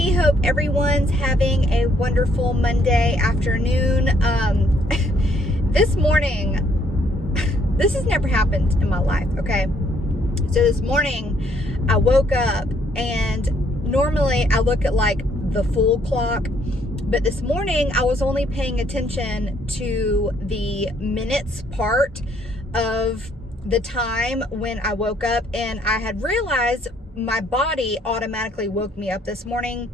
Hope everyone's having a wonderful Monday afternoon. This morning, this has never happened in my life, okay? So this morning, I woke up, and normally I look at like the full clock, but this morning I was only paying attention to the minutes part of the time when I woke up, and I had realized my body automatically woke me up this morning.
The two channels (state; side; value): normal; both; correlation 0.68